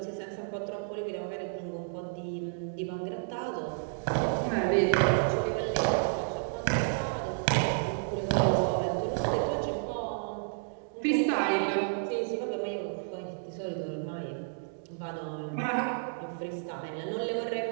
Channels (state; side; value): silent; left; digital silence